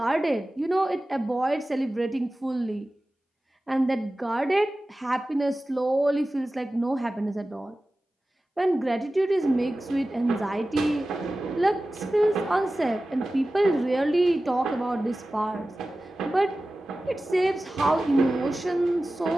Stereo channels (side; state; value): both; normal; correlation 0.96